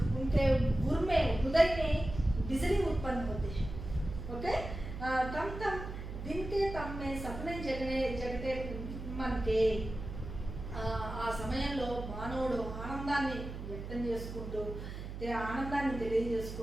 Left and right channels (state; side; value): noise; right; hum, 8 dB below the sound